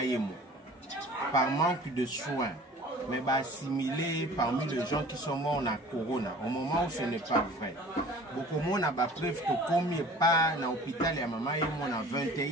Yemo par manque de soins. Mais assimilé parmi les gens qui sont morts dans corona, au moment où ce n'est pas vrai. Beaucoup de monde a preuve que comme il pas dans l'hôpital et à maman Yemo à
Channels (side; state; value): both; normal; correlation 0.46